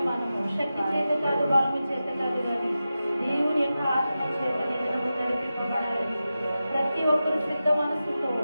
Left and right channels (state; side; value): inverted; both; correlation -0.93